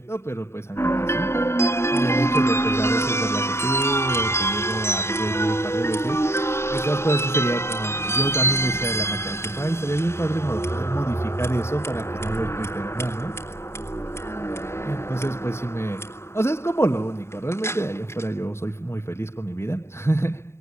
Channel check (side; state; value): right; late; 0.13 ms